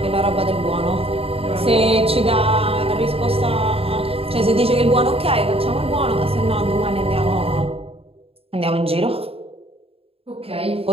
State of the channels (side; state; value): left; late; 0.28 ms